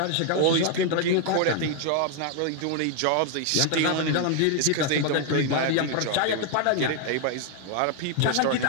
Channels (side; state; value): both; different; correlation 0.00